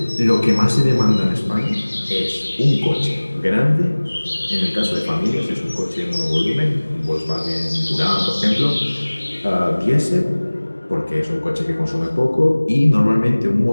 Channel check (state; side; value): inverted; both; correlation -1.00